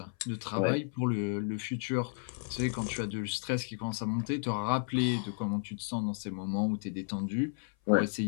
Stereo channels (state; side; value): silent; right; 56 dB below the other